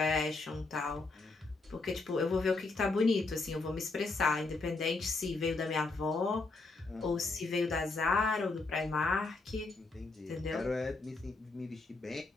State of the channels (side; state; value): right; quieter; 3.6 dB